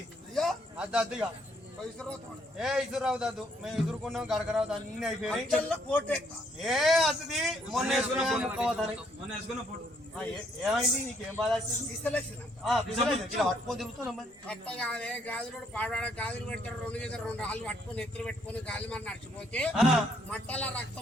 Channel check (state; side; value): normal; both; correlation 0.69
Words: అయ్యా అద్దుగా ఏ ఇసురావు దద్దు మేము ఇసురుకున్నాం గడకరావు అన్ని అయిపోయి ఏ అద్దుది మొన్న వేసుకున్నాం ఏమైంది నీకేం బాధ వచ్చింది పట్టుకొని తిరుగుతున్నాం మరి కట్ట కాదే గాజులు పాడవాడ గాజులు పెడతారు రెండు రాళ్ళు పట్టుకొని ఎత్తులు పెట్టుకొని గాలి మరి నడిచిపోతే మట్టల